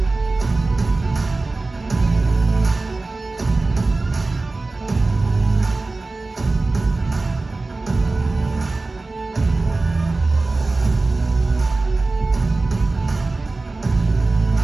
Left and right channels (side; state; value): left; quieter; 3.4 dB